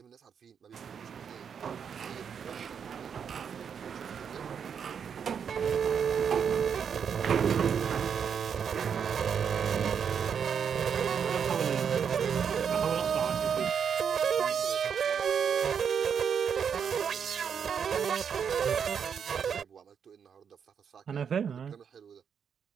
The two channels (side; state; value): left; quieter; 7.3 dB